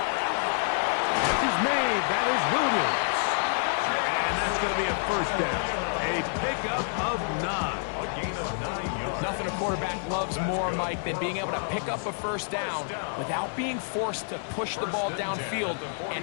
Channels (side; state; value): right; silent; digital silence